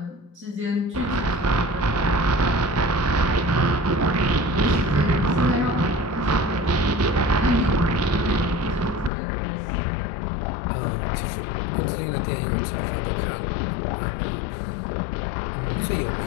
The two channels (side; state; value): right; drops out; at 9.1 s